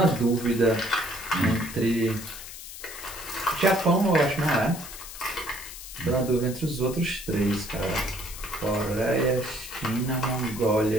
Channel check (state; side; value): noise; left; hiss, 12 dB below the sound